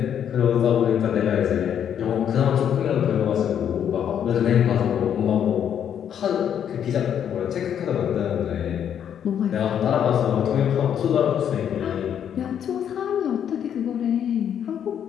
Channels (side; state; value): right; quieter; 9.0 dB